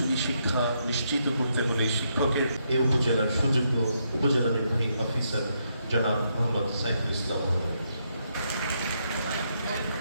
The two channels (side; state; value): both; inverted; correlation -0.78